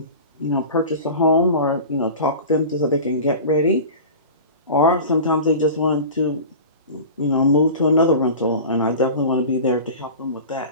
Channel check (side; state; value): both; inverted; correlation -0.34